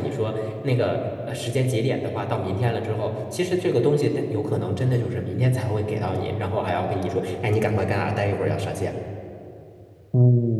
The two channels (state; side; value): identical; both; correlation 1.00